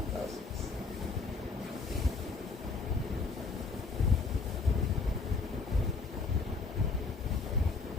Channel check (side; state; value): right; quieter; 4.2 dB